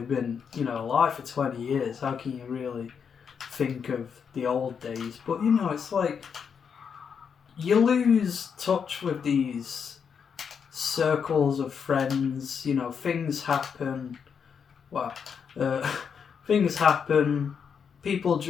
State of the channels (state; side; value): quieter; right; 6.8 dB